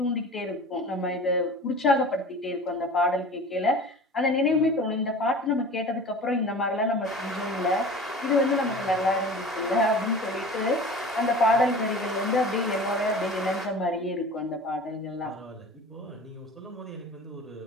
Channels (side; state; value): both; normal; correlation 0.39